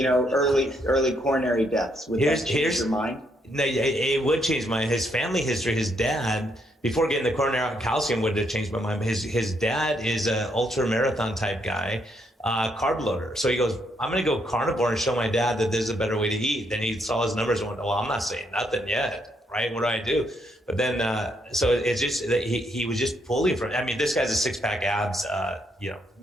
early coronary deaths, would that change your mind? No, it would change my. His family history. His dad, before getting the coronary calcium, would have changed my mind. His dad is an ultra marathon type guy. carb loader. So he goes, I'm going to go carnivore and show my dad that there's a better way to eat. Then he saw his numbers and went, well, I'm not saying nothing yet, right? What do I do? But then, so it's just that he was just pulling from, I mean, this guy's a 6-pack abs,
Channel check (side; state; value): both; normal; correlation 0.74